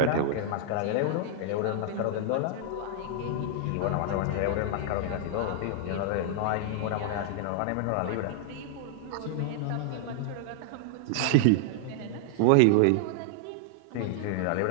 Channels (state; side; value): different; both; correlation -0.01